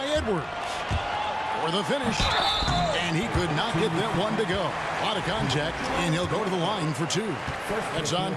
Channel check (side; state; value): both; identical; correlation 1.00